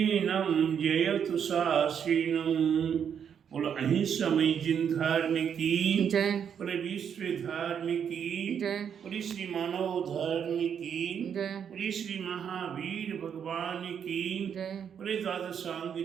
जयतु शास्त्रीनम। बोलो अहिंसामयी जिन धर्म की जय। बोले विश्व धर्म की जय। बोले श्री मानव धर्म की जय। बोले श्री महावीर भगवान की जय। बोले द्वादशांग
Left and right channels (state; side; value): quieter; left; 7.9 dB